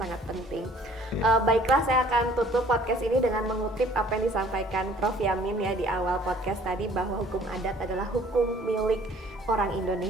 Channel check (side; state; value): both; normal; correlation 0.55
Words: penting. Baiklah, saya akan tutup podcast ini dengan mengutip apa yang disampaikan Prof. Yamin ya di awal podcast tadi, bahwa hukum adat adalah hukum milik orang